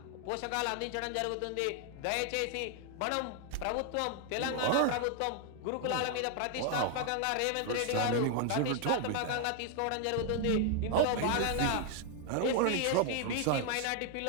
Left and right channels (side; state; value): both; different; correlation 0.00